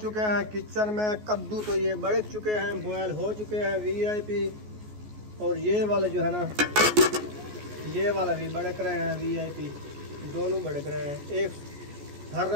हैं किचन में। कद्दू तो ये बड़क चुके हैं बॉयल हो चुके हैं VIP। और ये वाले जो है ना ये वाला भी बड़क रहे हैं VIP। दोनों बड़क रहे हैं। एक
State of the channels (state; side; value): late; left; 14 ms